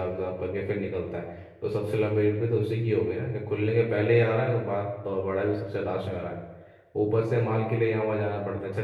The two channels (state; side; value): identical; both; correlation 1.00